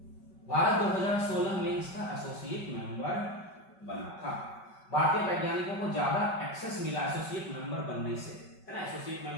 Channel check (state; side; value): late; right; 5.2 ms